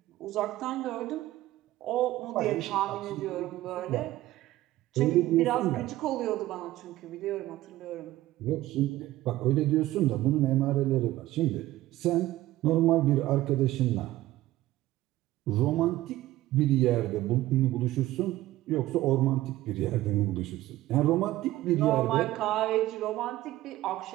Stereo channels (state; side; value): quieter; left; 16.0 dB